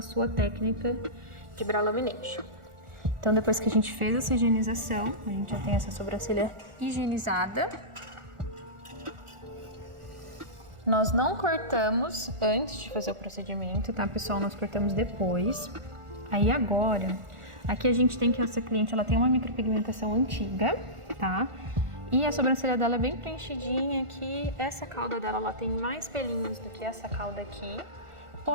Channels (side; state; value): left; late; 1.4 ms